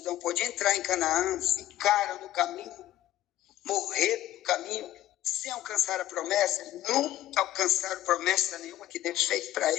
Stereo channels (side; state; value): right; quieter; 13.7 dB